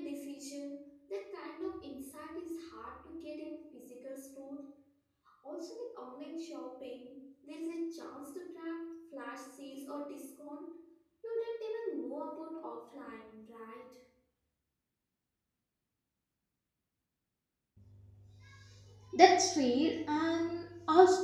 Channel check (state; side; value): identical; both; correlation 1.00